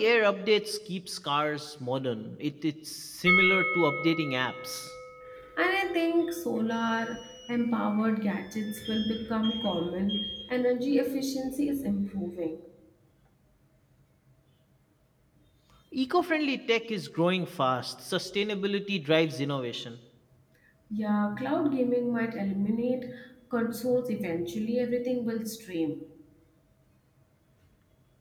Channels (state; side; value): identical; both; correlation 1.00